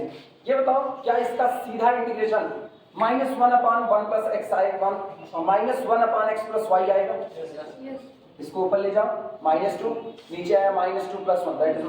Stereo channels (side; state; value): both; identical; correlation 1.00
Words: ये बताओ क्या इसका सीधा इंटीग्रेशन -1 अपॉन 1 प्लस एक्स आएगा, -1 अपॉन एक्स प्लस वाई आएगा। इसको ऊपर ले जाओ -2, नीचे आया -2 प्लस 1 दैट इज